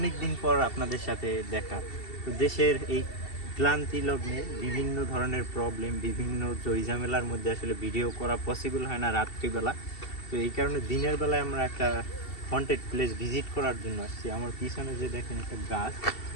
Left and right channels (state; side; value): late; right; 2.7 ms